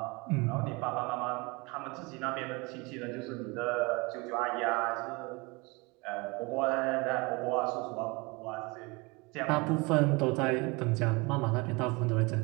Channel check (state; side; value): quieter; left; 26.6 dB